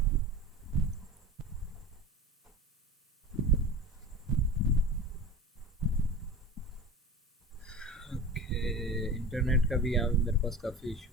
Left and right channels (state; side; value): normal; both; correlation 0.34